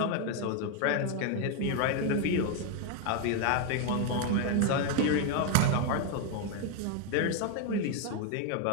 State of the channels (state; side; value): different; both; correlation 0.01